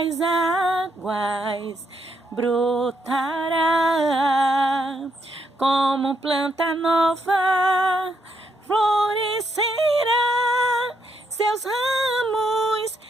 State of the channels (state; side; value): normal; both; correlation 0.78